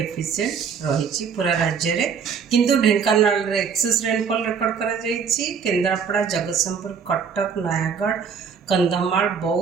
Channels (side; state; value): left; quieter; 6.4 dB